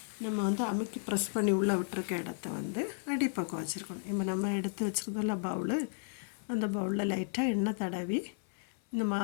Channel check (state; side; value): silent; right; 55 dB below the other